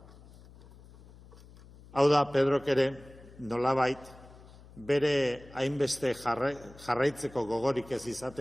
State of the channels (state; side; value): noise; left; hum, 21 dB below the sound